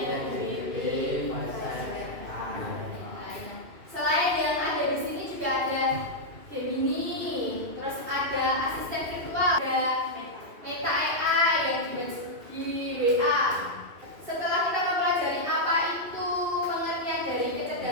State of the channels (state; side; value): late; left; 2.6 ms